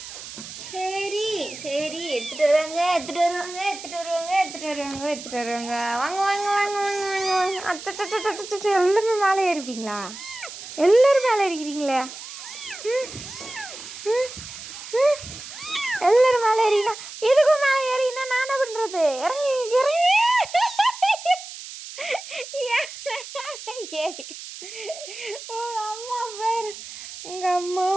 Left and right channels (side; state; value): right; noise; hiss, 12 dB below the sound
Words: சரி, எடுத்துட்டு வருவாங்க. வாங்க. எல்லாருமே மேலே ஏறிப்பீங்களா? எல்லாரும் மேலே ஏறிக்கிறீங்களே. எல்லாரும் மேலே ஏறினா எதுக்கும் மேலே ஏறினா நான் என்ன பண்றது? இறங்கி ஏறி. அம்மா பேர் உங்க அம்மா